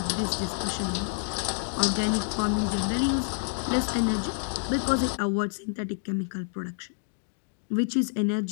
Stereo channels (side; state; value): right; silent; digital silence